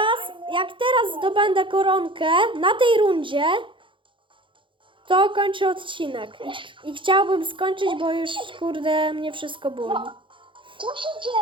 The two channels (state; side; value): late; left; 0.24 ms